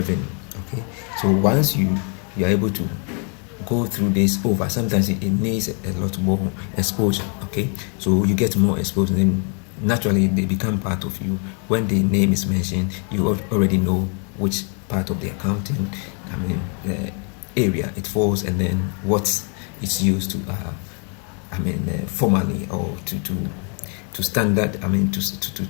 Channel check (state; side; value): quieter; right; 39.5 dB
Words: Okay, so once you are able to go through this over, sometimes it needs a lot more exposure. Okay, so you get more exposure, then naturally they become part of you. When the name is mentioned, you already know which part of the accounting area it falls, and then what it's used to formally, or to standard,